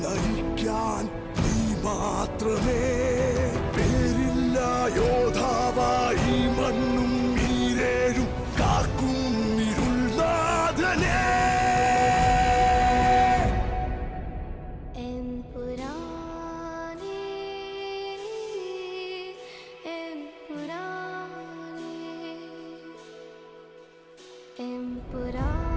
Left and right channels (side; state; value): both; identical; correlation 1.00